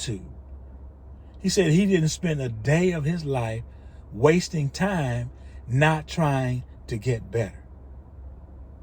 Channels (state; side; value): identical; both; correlation 1.00